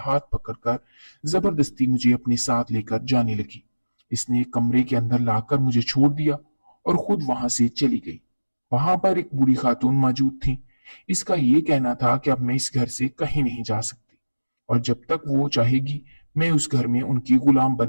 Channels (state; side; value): inverted; both; correlation -1.00